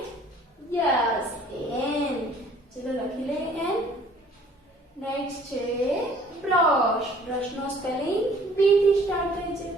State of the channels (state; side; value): normal; both; correlation 0.55